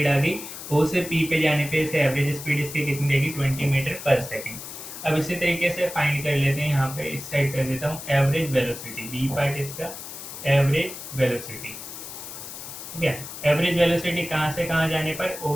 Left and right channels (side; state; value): left; noise; hiss, 11 dB below the sound